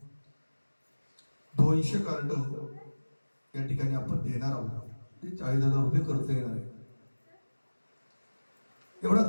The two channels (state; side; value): inverted; both; correlation -1.00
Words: 200 कार्ड या ठिकाणी आपण देणार आहोत. ते 40,000 रुपये खर्च येणार आहे. एवढा